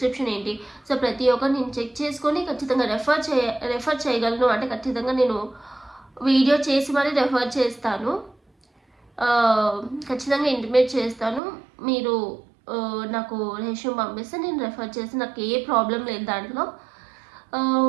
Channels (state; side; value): drops out; left; at 11.4 s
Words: ఏంటి, సో ప్రతి ఒక్కరు నేను చెక్ చేసుకొని ఖచ్చితంగా రెఫర్ చేయగలను. అంటే ఖచ్చితంగా నేను వీడియో చేసి మరీ రెఫర్ చేస్తాను, ఖచ్చితంగా ఇంటిమేట్ చేస్తాను. మీరు నాకు రెజ్యూమ్ పంపిస్తే నేను రెఫర్ చేసి, నాకు ఏ ప్రాబ్లం లేదు దాంట్లో.